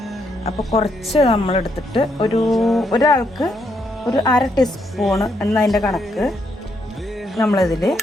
അപ്പോൾ കുറച്ച് നമ്മളെടുത്തിട്ട് ഒരാൾക്ക് ഒരു 1/2 ടീസ്പൂണ് എന്നതിൻ്റെ കണക്ക് നമ്മളിതിൽ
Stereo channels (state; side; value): normal; both; correlation 0.76